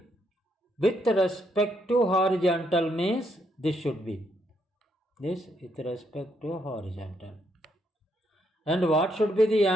with respect to horizontal? Means this should be this with respect to horizontal. And what should be the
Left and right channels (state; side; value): normal; both; correlation 0.75